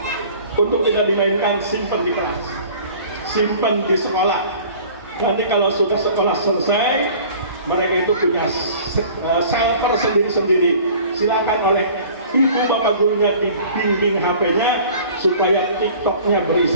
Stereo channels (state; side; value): inverted; both; correlation -0.47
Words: Untuk tidak dimainkan, simpan di kelas, simpan di sekolah. Nanti kalau sudah sekolah selesai, mereka itu punya server sendiri-sendiri. Silakan oleh ibu bapak gurunya dibimbing HP-nya supaya TikTok-nya